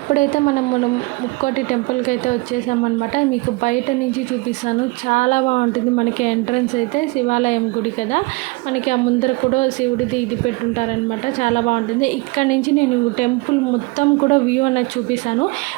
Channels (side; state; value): left; quieter; 25.3 dB